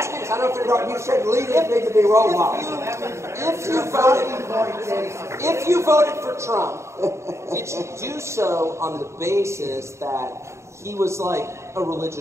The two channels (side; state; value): left; late; 0.14 ms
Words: you this. I don't know if you said leaders need to be role models. If you voted for Trump, did you do so on the basis that he was like a